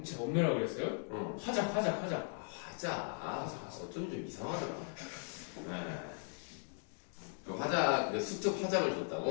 제가 엄매라고 그랬어요? 어. 화자. 화자. 어쩜 좀 이상하더라. 네. 그 화자, 그 수특 화작을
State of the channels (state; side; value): silent; right; 52 dB below the other